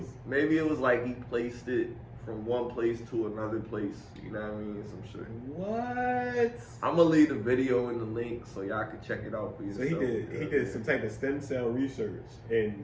Maybe it was like he placed it from one place to another place. You know what I mean? Some shit. What? I'm gonna leave the video in the link so y'all can check it out for So yourself. he did some type of stem cell research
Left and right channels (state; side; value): identical; both; correlation 1.00